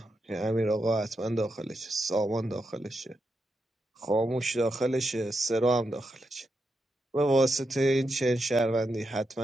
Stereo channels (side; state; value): both; normal; correlation 0.85